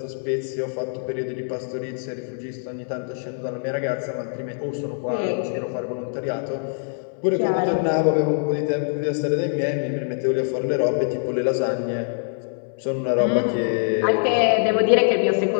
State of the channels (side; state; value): right; silent; 63 dB below the other